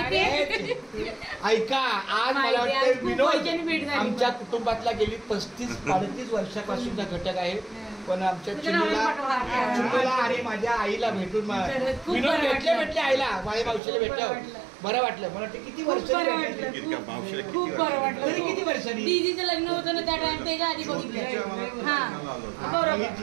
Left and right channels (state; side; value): drops out; left; at 13.8 s